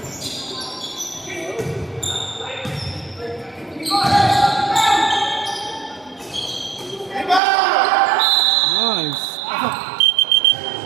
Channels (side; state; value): left; drops out; at 7.4 s